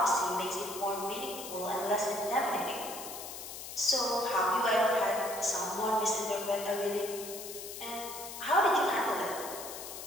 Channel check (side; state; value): left; noise; hiss, 10 dB below the sound